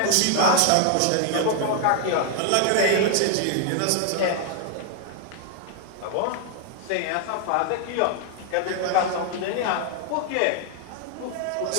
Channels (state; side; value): different; both; correlation 0.00